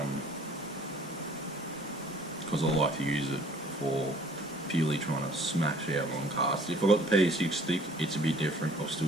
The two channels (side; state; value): both; normal; correlation 0.54